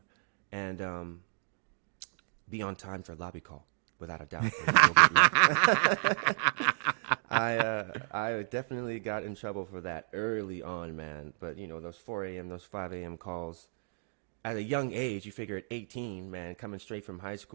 And be on time for a lobby call, without a doubt. I definitely got in trouble for that early on, man. But, those 4 a.m., those 5 a.m. calls, at a young age, you figure at 18, man, coming straight from high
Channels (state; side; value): silent; left; digital silence